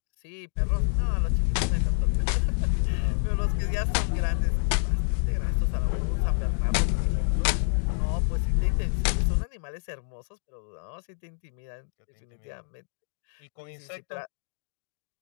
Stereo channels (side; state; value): right; silent; 60 dB below the other